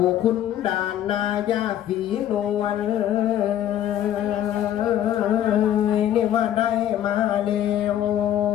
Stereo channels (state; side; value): quieter; right; 11.3 dB